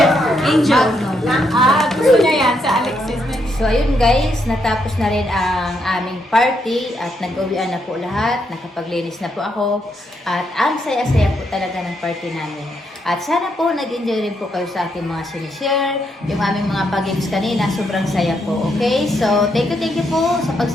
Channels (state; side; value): normal; both; correlation 0.78